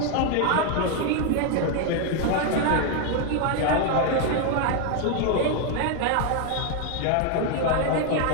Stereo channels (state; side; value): different; both; correlation 0.01